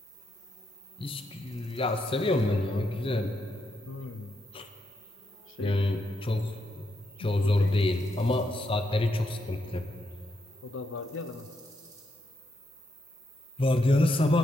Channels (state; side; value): normal; both; correlation 0.80